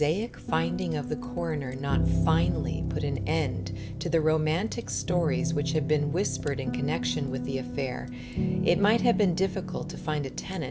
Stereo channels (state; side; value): identical; both; correlation 1.00